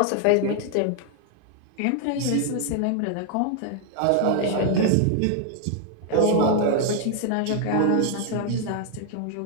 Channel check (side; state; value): both; different; correlation 0.00